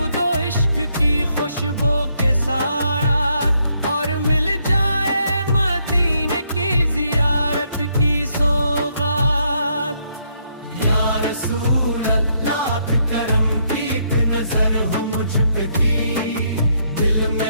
इश्क की खुशबू के साथ, और मिल जाए मदीने की ज़ियारत की सौगात। या रसूल अल्लाह करम की एक नजर हो मुझ पे भी, दिल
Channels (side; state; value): both; inverted; correlation -0.74